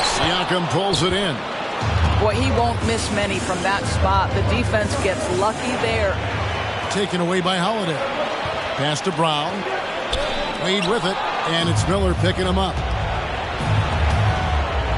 Siakam pulls it in. Boy, he won't miss many from that spot. The defense gets lucky there. Taken away by Holiday. Pass to Brown. Wade with it. And it's Miller picking him up.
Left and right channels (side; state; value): both; identical; correlation 1.00